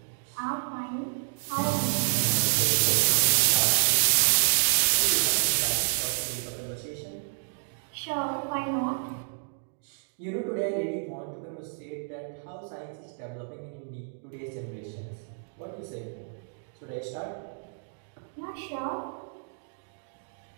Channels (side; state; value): left; silent; digital silence